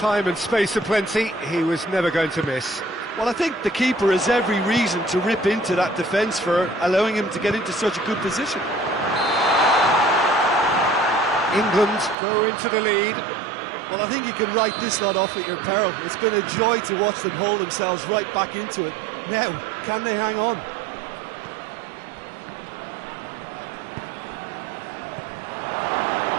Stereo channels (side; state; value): left; drops out; at 12.2 s